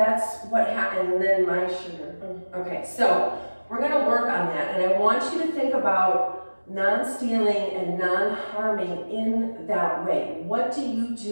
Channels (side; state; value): both; inverted; correlation -1.00